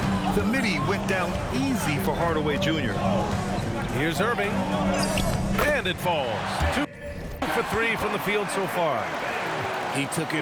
The midi went down easy for Hardaway Jr. Here's Irving. And it falls. 2 for 3 from the field so far. He took it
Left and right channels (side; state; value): both; identical; correlation 1.00